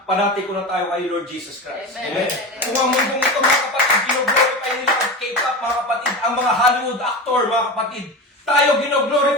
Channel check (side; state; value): both; normal; correlation 0.26